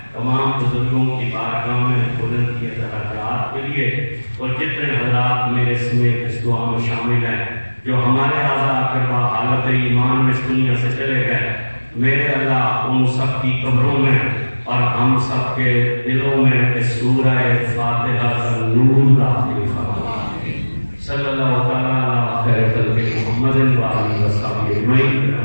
تمام بزرگوں کی بارگاہ میں بلند کیے درجات کے لیے، اور جتنے حضرات میرے سمیت اس دعا میں شامل ہیں جو ہمارے اعضاء کروا حالت ایمان میں اس دنیا سے چلے گئے، میرے اللہ ان سب کی قبروں میں اور ہم سب کے دلوں میں اس سورہ فاتحہ کا نور داخل فرما۔ صلی اللہ تعالیٰ علی خیر خلق محمد وآلہ وصحبہ اجمعین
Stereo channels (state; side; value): inverted; both; correlation -1.00